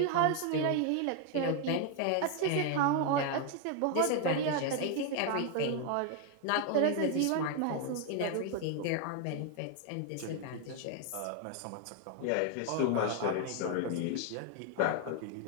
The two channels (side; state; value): both; different; correlation 0.01